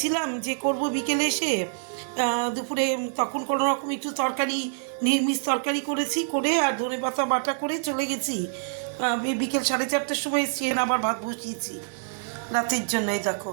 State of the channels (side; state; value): left; silent; 61 dB below the other